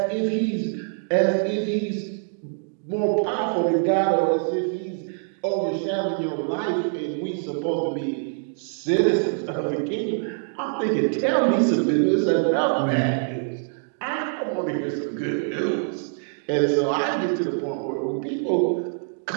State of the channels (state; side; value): silent; left; digital silence